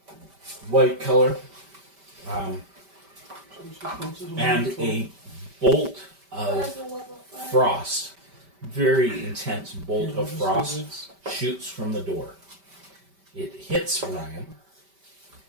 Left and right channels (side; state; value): left; late; 5.1 ms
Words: white color, and a bolt of frost, very intense bolt of frost, shoots from the door. It hits Ryan,